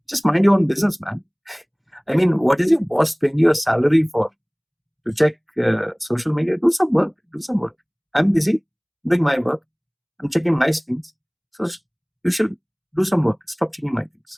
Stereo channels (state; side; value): identical; both; correlation 1.00